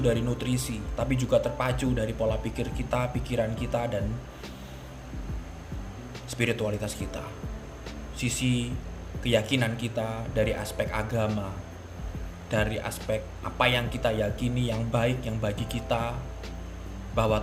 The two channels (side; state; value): both; identical; correlation 1.00